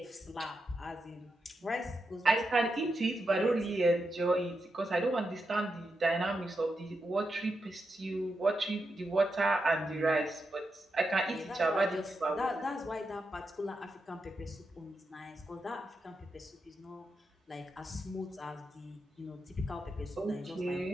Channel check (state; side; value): normal; both; correlation 0.86